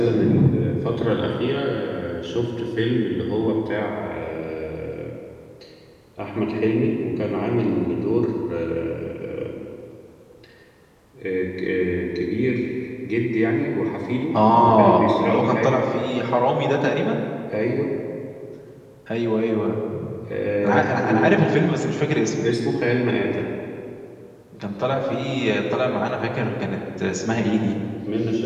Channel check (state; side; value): identical; both; correlation 1.00